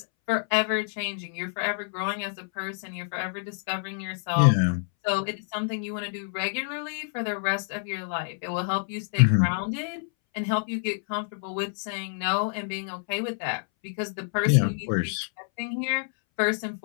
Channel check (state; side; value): silent; right; 60 dB below the other